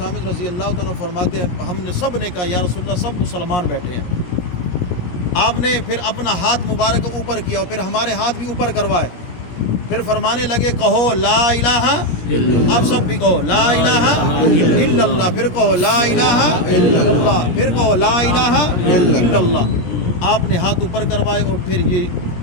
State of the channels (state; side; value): late; right; 17 ms